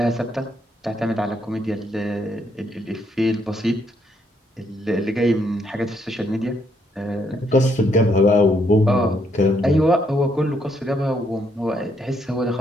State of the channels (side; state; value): both; normal; correlation 0.73